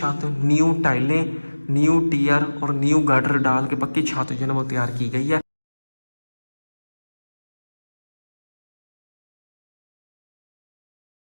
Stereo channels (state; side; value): inverted; both; correlation -1.00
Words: न्यू टाइलें, न्यू टियर और न्यू गार्डर डाल के पक्की छत जो है ना वो तैयार की गई है।